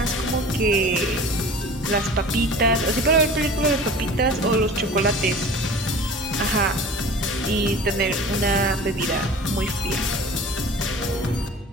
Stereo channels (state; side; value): normal; both; correlation 0.41